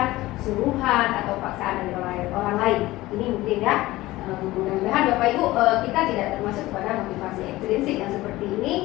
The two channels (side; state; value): right; quieter; 18.0 dB